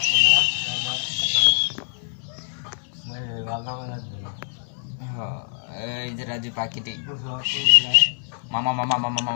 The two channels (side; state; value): right; silent; digital silence